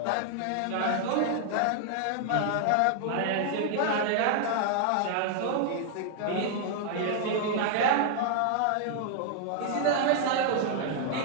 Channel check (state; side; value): different; both; correlation 0.00